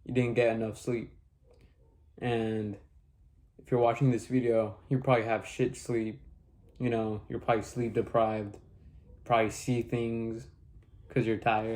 you didn't get enough sleep. And if you're watching this video, you probably have shit sleep. You're probably sleep deprived. Probably see things because you're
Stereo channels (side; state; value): both; identical; correlation 1.00